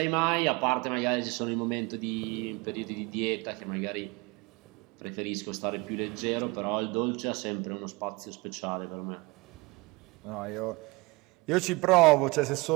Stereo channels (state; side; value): quieter; left; 25.5 dB